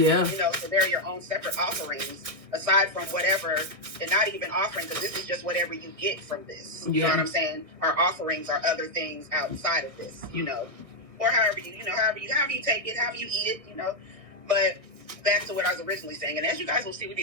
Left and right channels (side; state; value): left; late; 1.6 ms